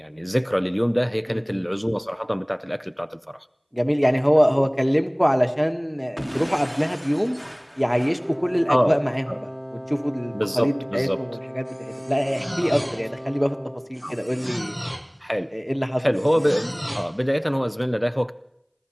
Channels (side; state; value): both; identical; correlation 1.00